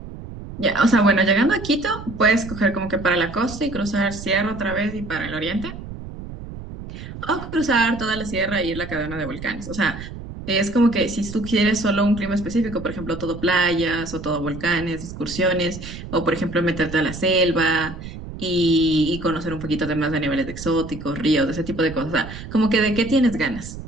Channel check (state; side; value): noise; right; rumble, 11 dB below the sound